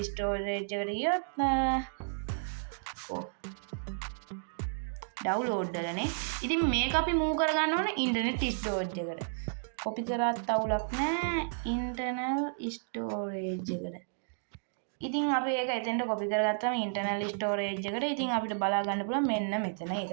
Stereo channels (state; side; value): silent; left; digital silence